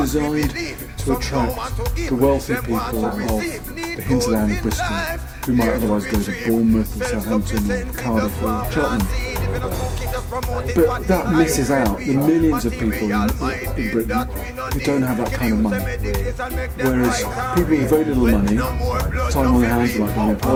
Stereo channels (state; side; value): identical; both; correlation 1.00